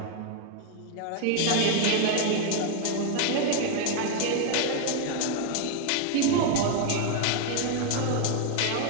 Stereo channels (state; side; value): different; both; correlation 0.00